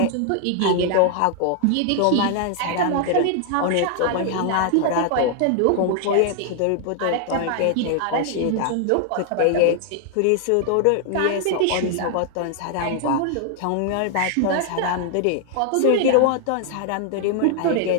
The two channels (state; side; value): different; both; correlation 0.00